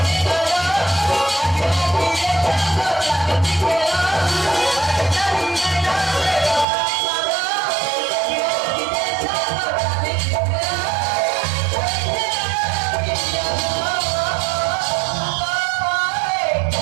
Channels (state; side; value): drops out; left; at 6.7 s